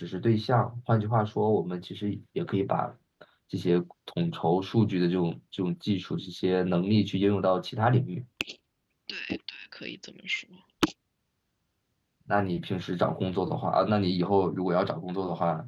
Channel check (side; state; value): both; identical; correlation 1.00